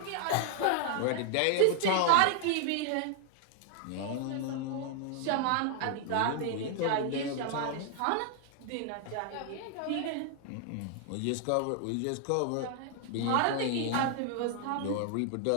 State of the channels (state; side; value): different; both; correlation 0.00